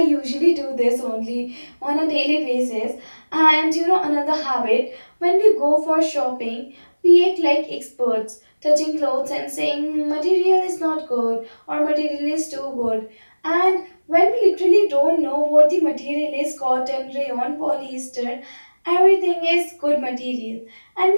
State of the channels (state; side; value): inverted; both; correlation -1.00